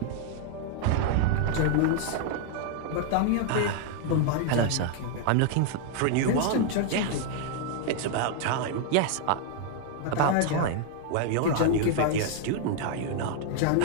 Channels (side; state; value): both; different; correlation 0.00